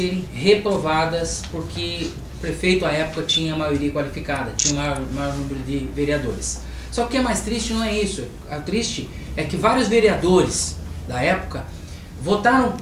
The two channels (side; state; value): both; identical; correlation 1.00